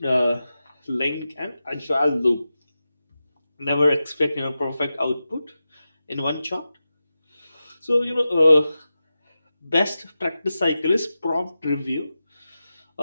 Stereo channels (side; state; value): both; inverted; correlation -0.92